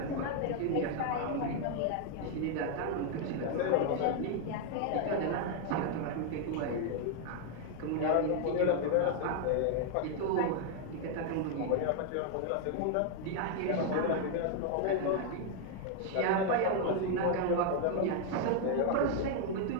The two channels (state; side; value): different; both; correlation 0.00